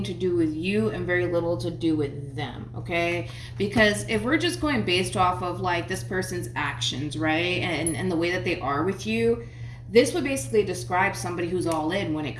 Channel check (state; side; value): identical; both; correlation 1.00